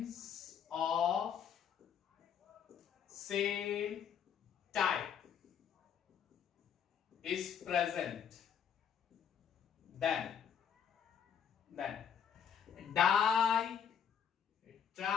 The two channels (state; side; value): quieter; right; 7.9 dB